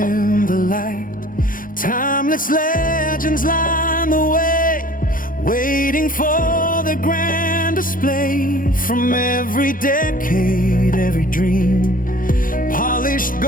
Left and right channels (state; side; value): late; right; 0.40 ms